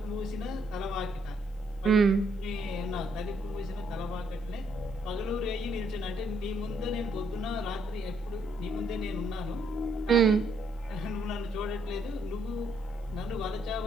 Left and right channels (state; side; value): normal; both; correlation 0.72